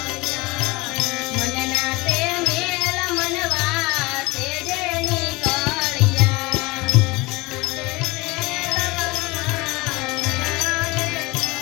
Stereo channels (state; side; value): quieter; right; 23.2 dB